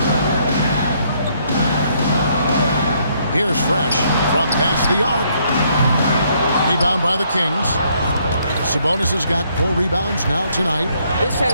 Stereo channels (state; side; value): inverted; both; correlation -0.69